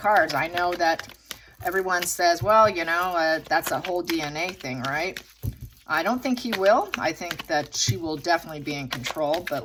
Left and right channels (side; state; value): both; identical; correlation 1.00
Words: I know that everyone says, well, that's a whole DNA thing, right? I don't think he will. I think that she will definitely be in control. But